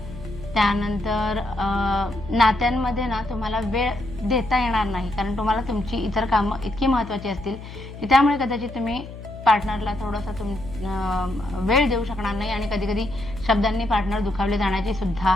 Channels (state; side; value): noise; left; hum, 13 dB below the sound